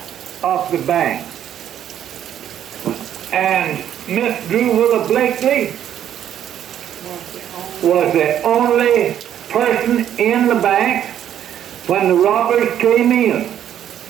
of the bank. And Miss Drew Willa Blakely was the only person in the bank when the robbers came in.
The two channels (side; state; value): left; quieter; 10.4 dB